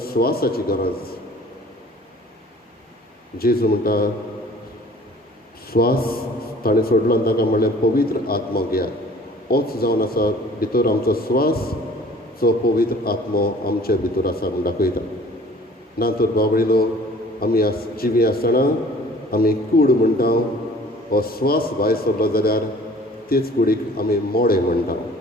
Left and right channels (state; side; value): normal; both; correlation 0.50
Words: स्वासाची गरज जेजू म्हणटा स्वास ताणें सोडलो आनी ताका म्हणलें पवित्र आत्मो घेयात होच जावन आसा भितर आमचो स्वास जो पवित्र आत्मो आमचे भितर आसा म्हूण दाखयता ना तर बाबडीनो आमी जिवी आसतना आमी कूड म्हणटा हो स्वास भायर सरलो जाल्यार तेच कुडीक आमी मोडे म्हणटा